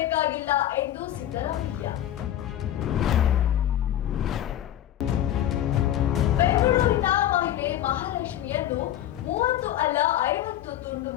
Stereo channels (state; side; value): quieter; right; 11.9 dB